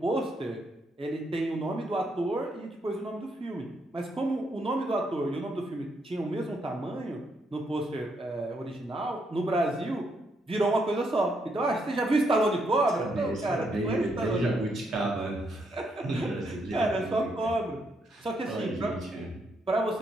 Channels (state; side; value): normal; both; correlation 0.76